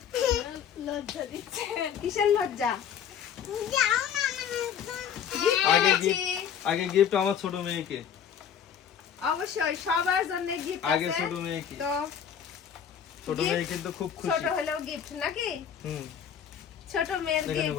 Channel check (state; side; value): quieter; right; 8.3 dB